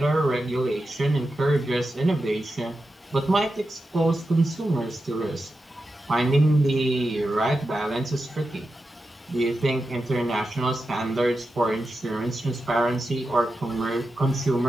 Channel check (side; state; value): both; normal; correlation 0.90